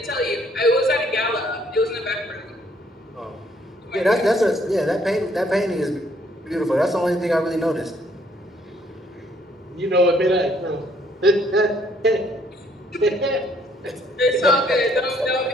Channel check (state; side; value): normal; both; correlation 0.65